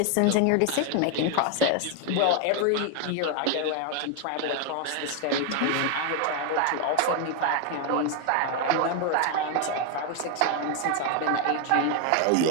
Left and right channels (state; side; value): different; both; correlation 0.01